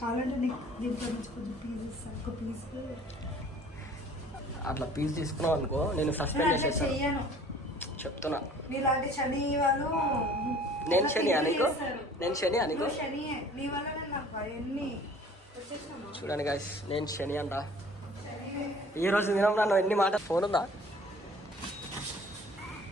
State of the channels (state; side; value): normal; both; correlation 0.50